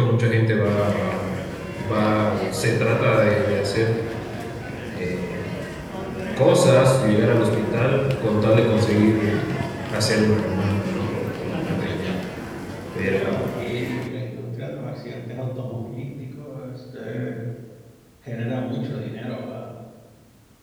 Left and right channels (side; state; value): both; identical; correlation 1.00